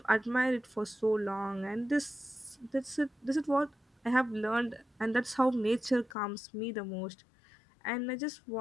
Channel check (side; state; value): right; drops out; at 6.1 s